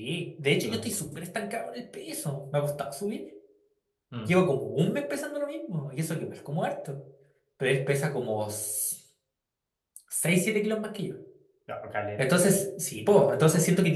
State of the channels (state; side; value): identical; both; correlation 1.00